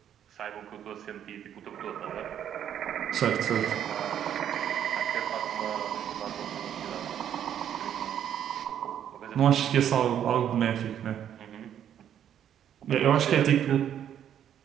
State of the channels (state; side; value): quieter; left; 9.8 dB